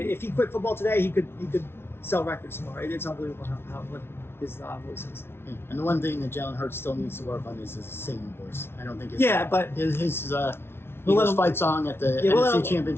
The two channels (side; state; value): right; late; 0.12 ms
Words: he quit football today, he could sell records tomorrow. It's unbelievable what his voice is. And the one thing that Jalen Hurts still needs to work on is his singing voice. I don't think but his Eagles fight song at the NFC